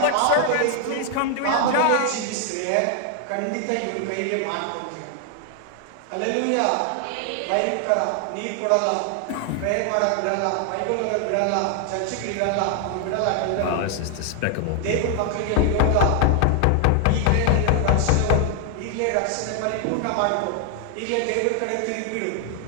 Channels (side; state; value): both; different; correlation 0.00